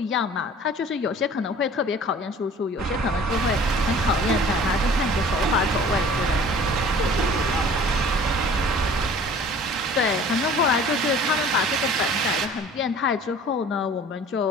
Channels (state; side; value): normal; both; correlation 0.48